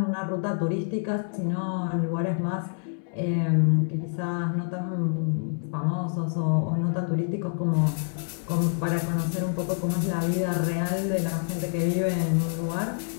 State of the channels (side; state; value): right; silent; digital silence